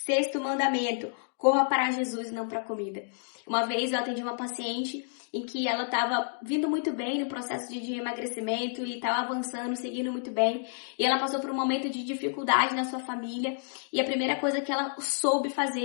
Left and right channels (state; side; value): silent; right; digital silence